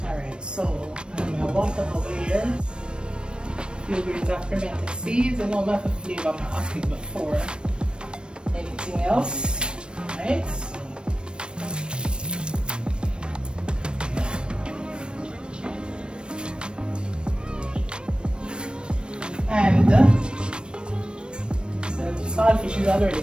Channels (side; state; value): left; late; 0.055 ms